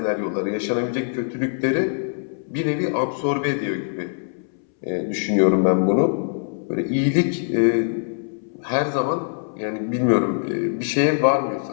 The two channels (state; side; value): silent; right; 64 dB below the other